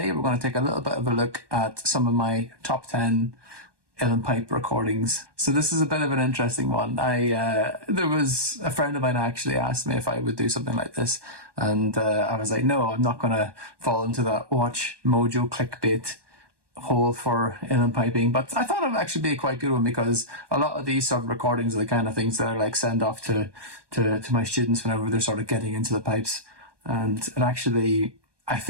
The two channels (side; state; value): left; late; 1.2 ms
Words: we're going to take a little bit of a look at some of my top 10 Uilleann Pipe recordings. So this is a bit of an interesting one. There was a friend of mine actually asked me if I would do something like this, and I was like, no, I'm not going to fall into that watch mojo clickbait hole for Uilleann piping, but I thought it would actually be a quite good one because a lot of these sort of recordings are the kind of things that I like send off to my students whenever they're sort of getting into the pipes, and it actually, I